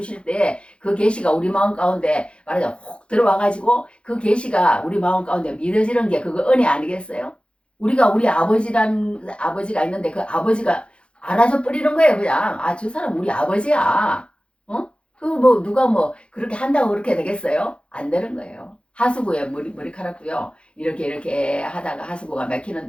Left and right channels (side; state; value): right; late; 0.058 ms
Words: 때 그 계시가 우리 마음 가운데 말하자면 혹 들어와가지고 그 계시가 우리 마음 가운데 믿어지는 게 그거 은혜 아니겠어요? 우리 아버지가 있는데 그 아버지가 알아서 뿌리는 거예요. 그냥 저 사람 우리 아버지야. 뭐 누가 뭐 그렇게 한다고 그렇게 되겠어요? 안 되는 거예요. 하수구에 머리카락도요. 이렇게 하다가 하수구가